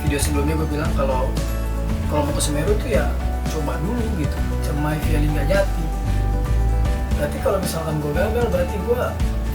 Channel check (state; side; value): identical; both; correlation 1.00